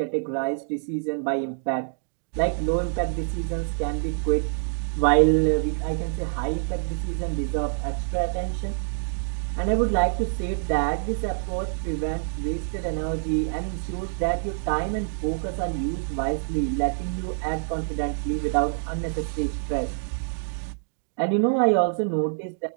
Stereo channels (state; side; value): silent; left; digital silence